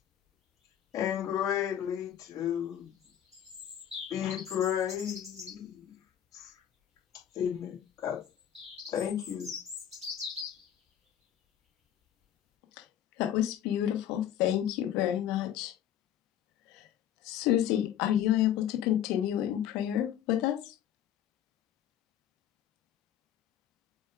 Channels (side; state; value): right; quieter; 10.5 dB